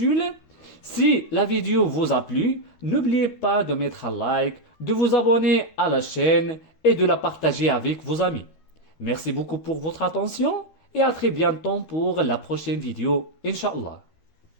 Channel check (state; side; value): late; right; 13 ms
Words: Si la vidéo vous a plu, n'oubliez pas de mettre un like, de vous abonner à la chaîne et de la partager avec vos amis. Merci beaucoup pour votre attention et à très bientôt pour la prochaine vidéo, Inch'Allah.